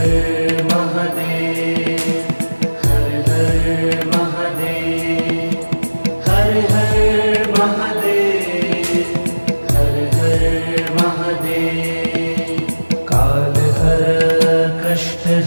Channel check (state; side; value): inverted; both; correlation -1.00